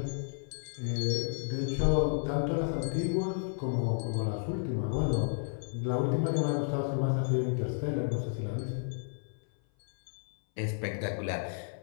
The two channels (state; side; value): silent; right; 56 dB below the other